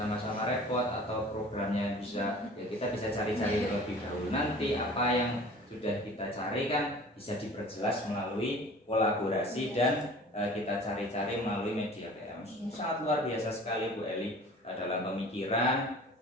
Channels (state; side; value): normal; both; correlation 0.45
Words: repot atau programnya bisa, ya kita bisa cari-cari terlebih dahulu. Nanti apa yang sudah kita cari kan bisa diperjelas melalui kolaborasi dan kita cari-cari melalui media PM. Ini sangat luar biasa sekali Bu Eli dalam pemikiran.